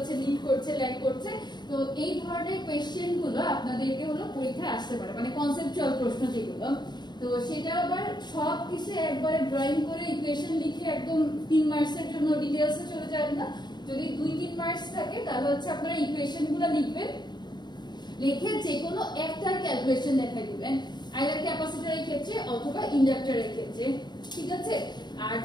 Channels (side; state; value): right; late; 0.21 ms